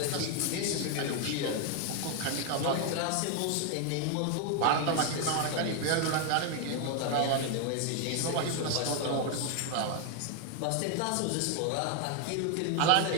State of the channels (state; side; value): different; both; correlation 0.01